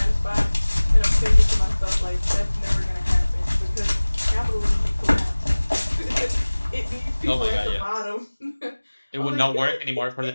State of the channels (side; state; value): both; inverted; correlation -1.00